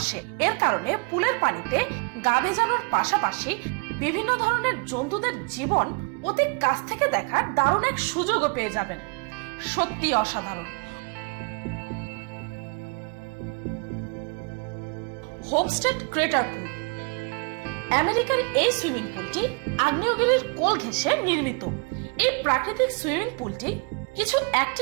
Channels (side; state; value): left; quieter; 33.1 dB